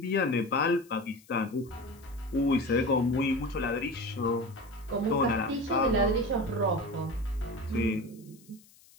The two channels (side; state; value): left; noise; hiss, 27 dB below the sound